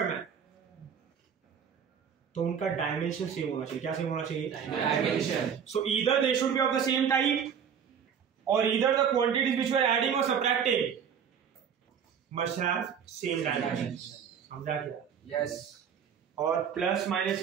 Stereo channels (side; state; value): left; quieter; 7.6 dB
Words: है, तो उनका डायमेंशन सेम होना चाहिए। क्या सेम होना चाहिए? Dimension. So either they should be of the same type और either the quantities which we are adding और subtracting must have same dimension. समझा क्या? Yes. और प्लस माइनस